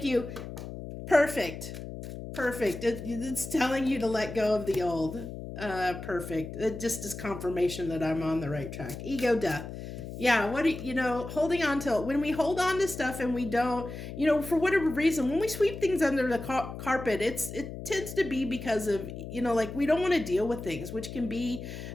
you. Perfect. It's telling you to let go of the old. Perfect. It just is confirmation that I'm on the right track. Ego death. Yeah, holding on to, when we hold on to stuff and we don't, for whatever reason, when we sweep things under the carpet, it tends to be because of, we don't want to deal with things, which can be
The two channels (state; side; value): noise; left; hum, 9 dB below the sound